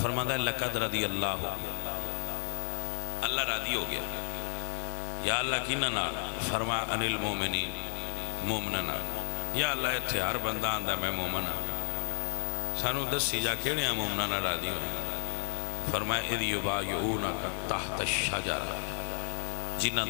فرماتا ہے لقد رضی اللہ، اللہ راضی ہو گیا۔ یا اللہ کی نہ فرما ان المومنین، مومننا، یا اللہ اتھے ہر بندہ آندہ میں مومن ہوں، سانو دسی جا کیڑے ہیں مومننا راضی ہوئے؟ فرمایا اذ یبایعونک تحت الشجرہ، جنہ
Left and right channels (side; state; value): right; silent; 56 dB below the other